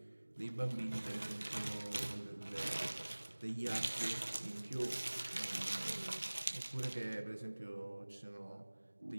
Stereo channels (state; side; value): inverted; both; correlation -1.00